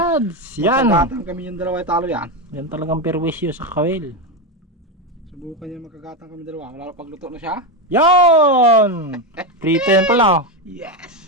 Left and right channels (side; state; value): both; normal; correlation 0.11